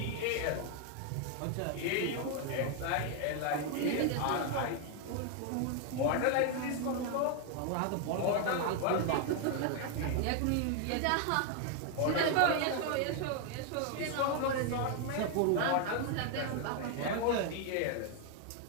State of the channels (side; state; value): both; different; correlation 0.00